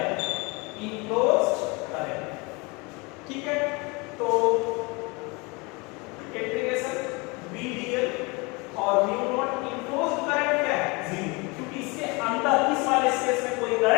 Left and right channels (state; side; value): quieter; right; 27.6 dB